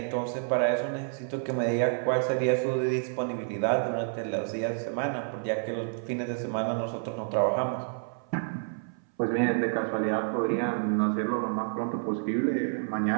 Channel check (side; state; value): left; silent; 58 dB below the other